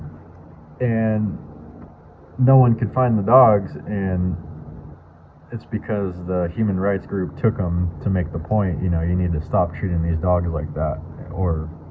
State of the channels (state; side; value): identical; both; correlation 1.00